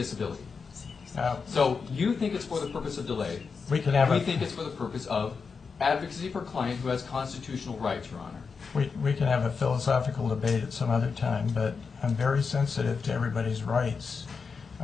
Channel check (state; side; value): quieter; right; 5.3 dB